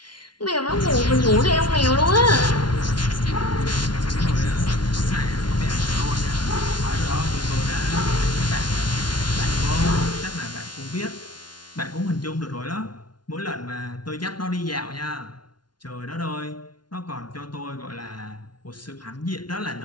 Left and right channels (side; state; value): right; late; 0.70 ms